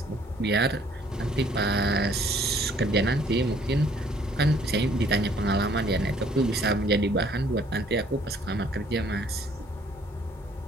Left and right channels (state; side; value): normal; both; correlation 0.60